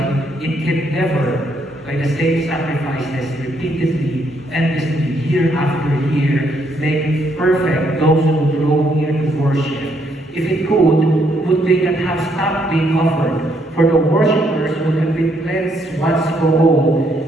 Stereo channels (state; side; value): normal; both; correlation 0.73